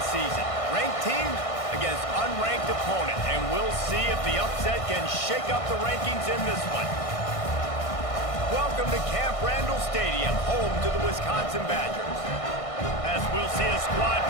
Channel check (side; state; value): right; late; 1.6 ms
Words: season. Ranked team against unranked opponent, and we'll see if the upset can shake up the rankings in this one. Welcome to Camp Randall Stadium, home to the Wisconsin Badgers. As we'll see a squad